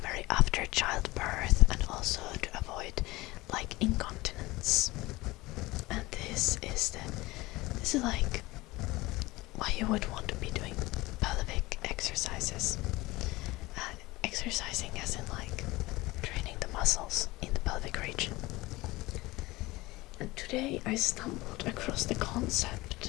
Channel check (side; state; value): right; quieter; 20.4 dB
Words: after childbirth, and also to avoid like incontinence. And this is like why you would want to be doing pelvic exercises. Exercising as in like training the muscles in the pelvic region. And today I stumbled across the